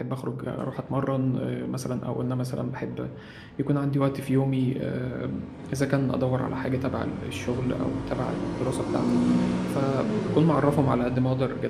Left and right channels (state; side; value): identical; both; correlation 1.00